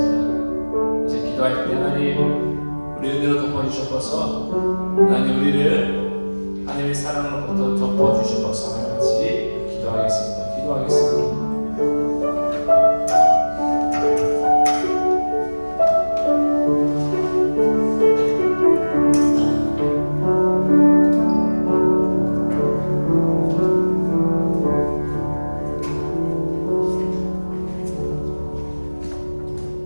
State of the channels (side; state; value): both; inverted; correlation -1.00